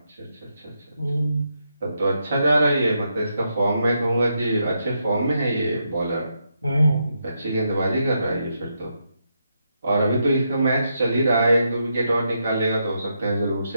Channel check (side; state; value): both; inverted; correlation -0.81